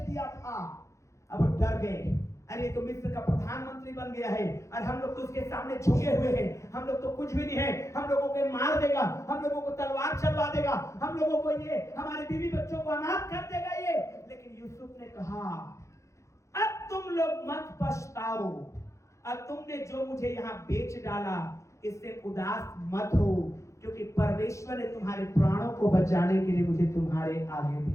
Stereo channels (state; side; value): late; right; 0.14 ms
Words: था। अब वो डर गए, अरे तो मिस्र का प्रधानमंत्री बन गया है, और हम लोग तो उसके सामने झुके हुए हैं, हम लोग तो कुछ भी नहीं है, हम लोगों को मार देगा, हम लोगों को तलवार चलवा देगा, हम लोगों को ये हमारे बीवी बच्चों को अनाथ कर देगा ये। लेकिन यूसुफ ने कहा, अब तुम लोग मत पछताओ, और तुमने जो मुझे यहाँ बेच डाला इससे उदास मत हो, क्योंकि परमेश्वर ने तुम्हारे प्राणों को बचाने के लिए मुझे तुम्हारे आगे